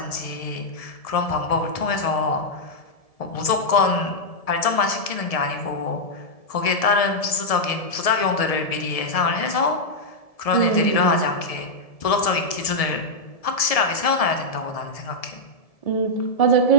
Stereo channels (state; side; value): late; right; 1.7 ms